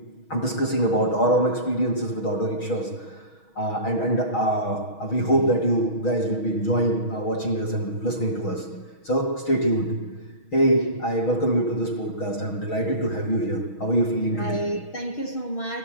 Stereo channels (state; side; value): late; right; 6.3 ms